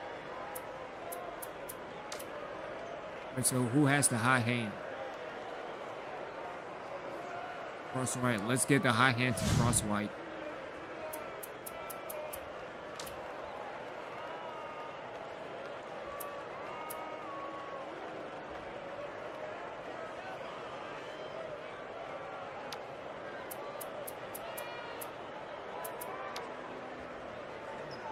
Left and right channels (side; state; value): both; identical; correlation 1.00